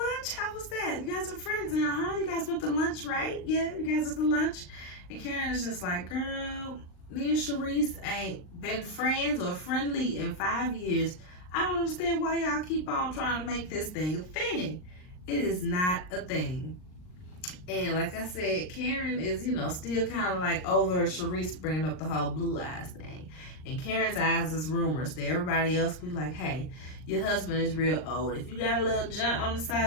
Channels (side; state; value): right; late; 39 ms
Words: How was that? You guys are friends now, huh? You guys went to lunch, right? Yeah, you guys went to lunch. And Karen is just like, girl, me and Sharice ain't been friends or friendly in 5 years. I don't understand why y'all keep on trying to make this thing a thing. It is not a thing. And like I said, Karen is, still kind of like over Sharice bringing up the whole blue eyes thing. And Karen's eyes is rumors to everybody else. Be like, hey, your husband is real old. If you got a little junk on the